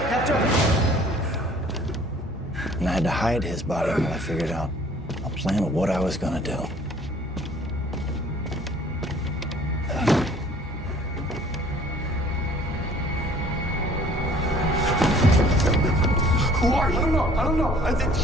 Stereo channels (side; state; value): both; normal; correlation 0.54